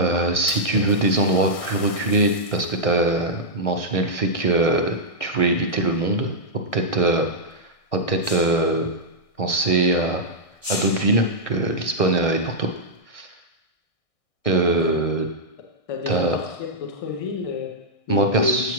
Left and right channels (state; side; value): late; right; 1.6 ms